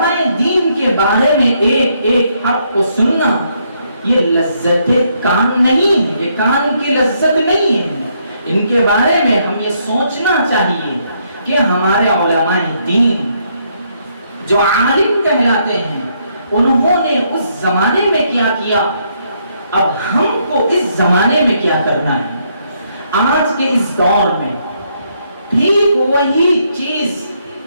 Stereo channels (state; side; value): inverted; both; correlation -0.73